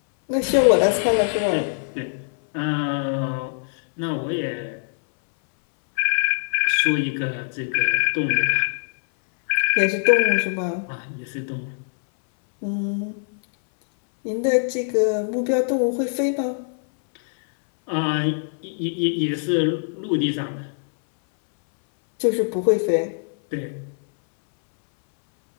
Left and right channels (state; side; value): silent; right; 61 dB below the other